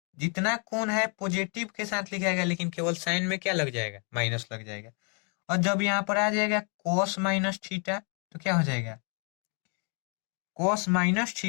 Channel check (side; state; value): right; quieter; 38.6 dB